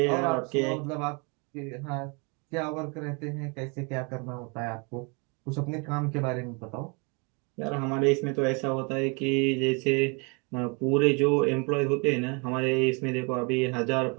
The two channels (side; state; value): left; quieter; 32.2 dB